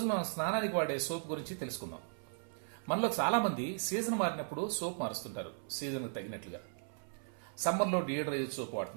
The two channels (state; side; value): silent; left; 53 dB below the other